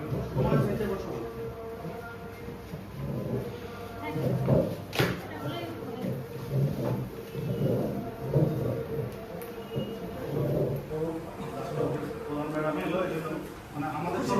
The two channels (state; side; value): identical; both; correlation 1.00